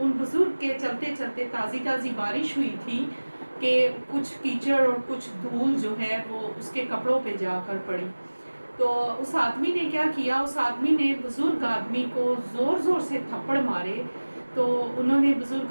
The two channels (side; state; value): both; inverted; correlation -1.00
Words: ان بزرگ کے چلتے چلتے تازی بارش ہوئی تھی کہ کچھ کیچڑ اور کچھ دھول جو ہے وہ اس کے کپڑوں پہ جا کر پڑی۔ تو اس آدمی نے کیا کیا، اس آدمی نے بزرگ آدمی کو زور سے تھپڑ مارے۔ تو انہوں نے